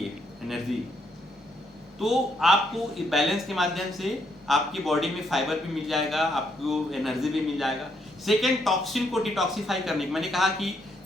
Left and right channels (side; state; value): both; normal; correlation 0.74